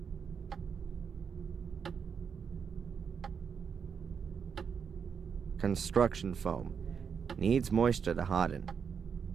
Construction foam. Needs moisture to harden.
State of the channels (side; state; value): left; quieter; 6.7 dB